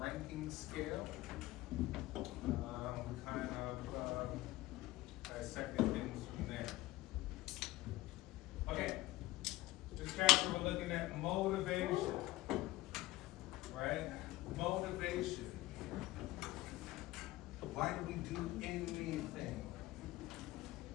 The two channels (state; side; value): quieter; right; 17.9 dB